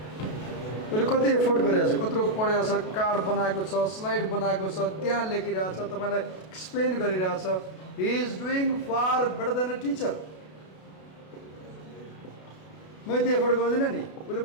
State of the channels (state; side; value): late; right; 32 ms